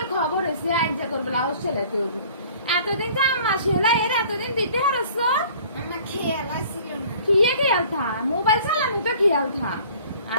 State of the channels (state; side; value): inverted; both; correlation -0.51